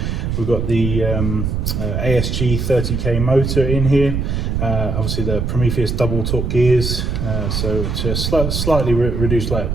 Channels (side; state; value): right; noise; rumble, 1 dB below the sound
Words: We've got the ASG 30k motor in here, obviously the Prometheus double torque gears, so it's slightly reduced like